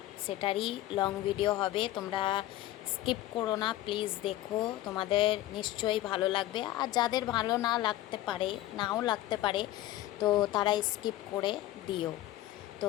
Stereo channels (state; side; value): quieter; right; 15.1 dB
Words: সেটারই লং ভিডিও হবে, তোমরা স্কিপ করো না প্লিজ, দেখো, তোমাদের নিশ্চয়ই ভালো লাগবে। আর যাদের ভালো না লাগতে পারে, নাও লাগতে পারে, তো তারা স্কিপ করে দিও।